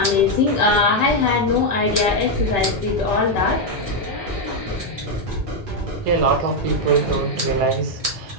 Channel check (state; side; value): normal; both; correlation 0.01